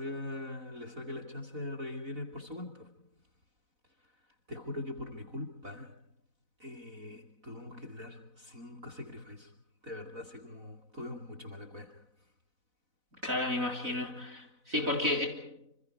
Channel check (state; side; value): late; left; 4.0 ms